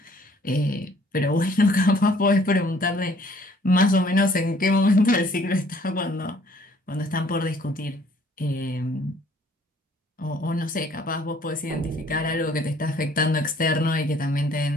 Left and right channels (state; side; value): normal; both; correlation 0.59